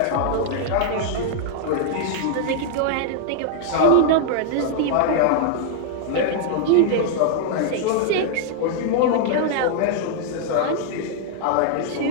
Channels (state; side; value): different; both; correlation -0.01